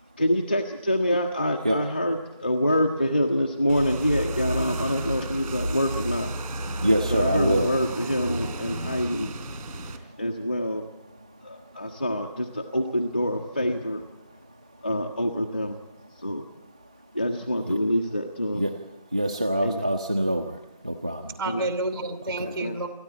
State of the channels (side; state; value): both; inverted; correlation -0.82